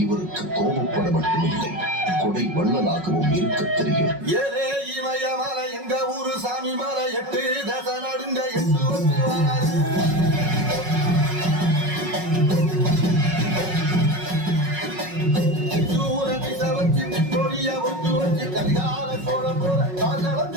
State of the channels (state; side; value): late; left; 5.4 ms